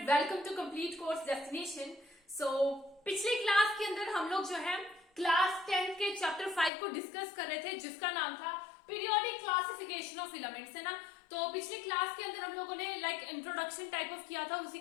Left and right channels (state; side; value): drops out; right; at 6.7 s